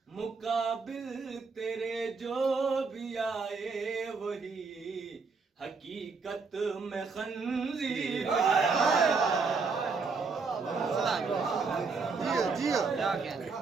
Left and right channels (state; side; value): quieter; left; 4.6 dB